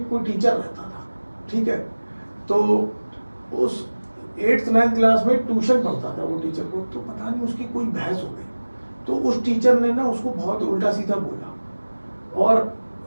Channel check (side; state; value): both; inverted; correlation -1.00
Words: कोई टीचर रहता था, ठीक है। तो उस 8th-9th क्लास में ट्यूशन पढ़ता था वो टीचर को। तो पता नहीं उसकी कोई बहस हो गई, तो उस टीचर ने ना उसको बहुत उल्टा सीधा बोला और